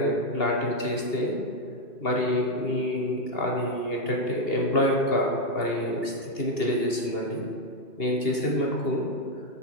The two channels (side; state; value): right; late; 2.8 ms